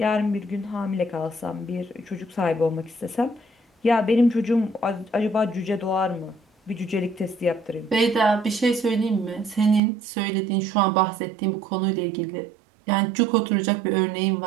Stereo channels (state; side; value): drops out; left; at 9.8 s